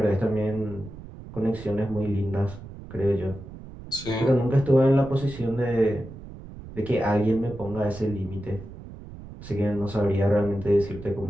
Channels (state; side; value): noise; right; rumble, 14 dB below the sound